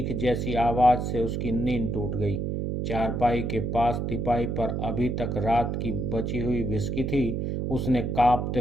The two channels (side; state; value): right; noise; hum, 1 dB below the sound